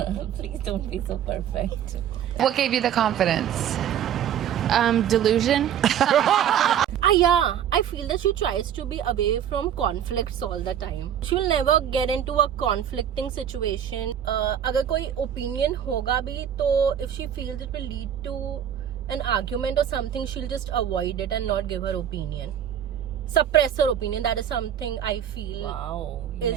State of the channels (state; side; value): quieter; left; 9.5 dB